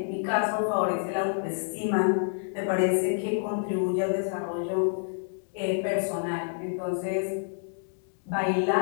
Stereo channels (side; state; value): right; silent; digital silence